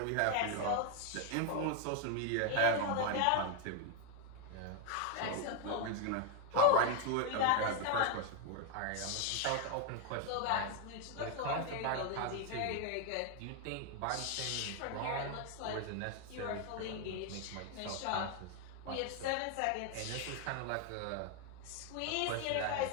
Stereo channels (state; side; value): different; both; correlation 0.00